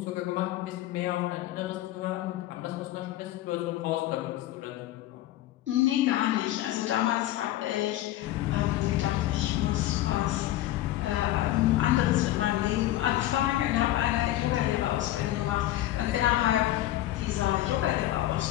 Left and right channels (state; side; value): quieter; right; 14.6 dB